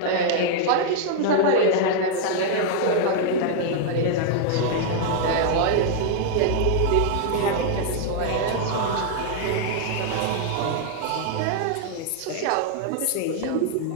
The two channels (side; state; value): both; different; correlation -0.01